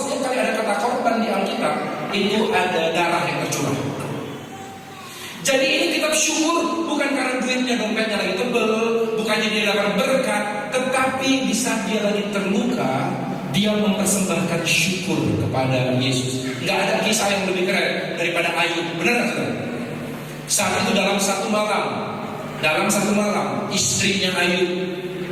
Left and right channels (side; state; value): both; identical; correlation 1.00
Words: kali ada kata korban di Alkitab itu ada darah yang tercurah. Jadi ini kitab syukur bukan karena duitnya, dompetnya lagi tebel, bukannya dia dapat berkat, tetapi di saat dia lagi terluka, dia mempersembahkan syukur kepada Yesus. Gak ada kisah yang lebih keren daripada Ayub, benar nggak saudara? Saat itu dalam satu malam, istrinya Ayub